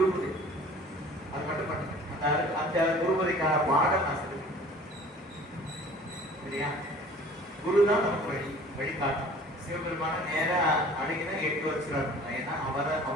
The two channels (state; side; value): normal; both; correlation 0.48